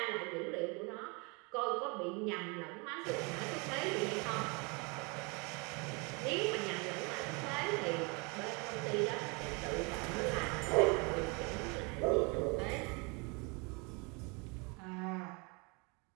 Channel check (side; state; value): left; quieter; 30.3 dB